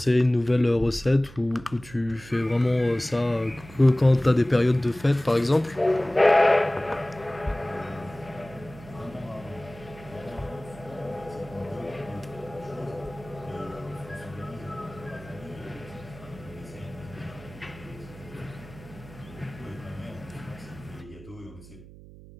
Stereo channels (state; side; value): noise; right; hum, 18 dB below the sound